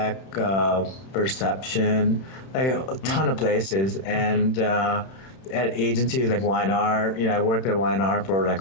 Perception, like a ton of places. And at agencies like Y&R, I worked at Y&R for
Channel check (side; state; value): right; late; 31 ms